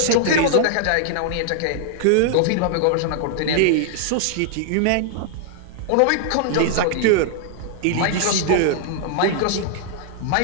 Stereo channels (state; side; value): different; both; correlation 0.00